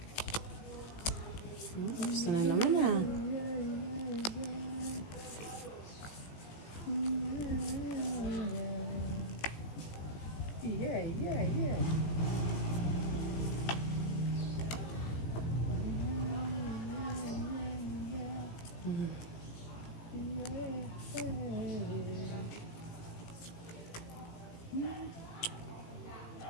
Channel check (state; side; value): late; right; 18 ms